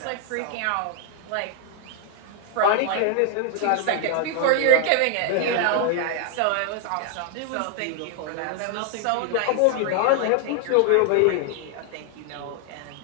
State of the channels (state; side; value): different; both; correlation 0.00